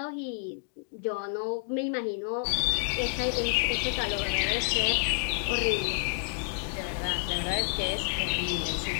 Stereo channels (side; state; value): right; silent; 56 dB below the other